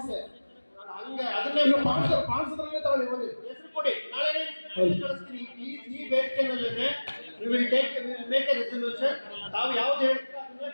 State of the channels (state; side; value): inverted; both; correlation -1.00